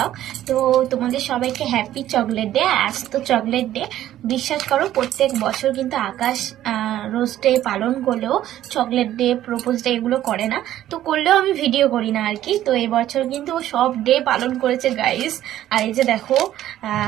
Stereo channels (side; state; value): left; quieter; 12.8 dB